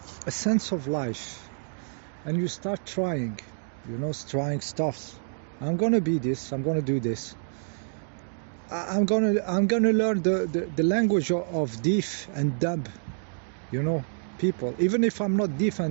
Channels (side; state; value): left; silent; digital silence